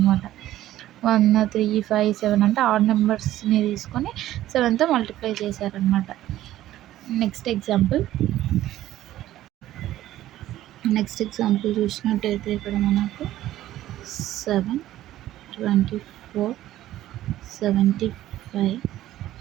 1 3 5 7 అంటే ఆడ్ నెంబర్స్ని తీసుకొని 7తో మల్టిప్లై చేశారనమాట. నెక్స్ట్ ఎగ్జాంపుల్ చూసినట్టయితే ఇక్కడ మనకు 7 24 75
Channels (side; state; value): left; quieter; 14.0 dB